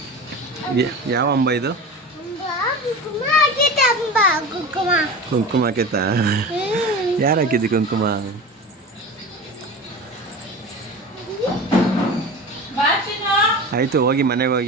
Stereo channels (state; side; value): normal; both; correlation 0.31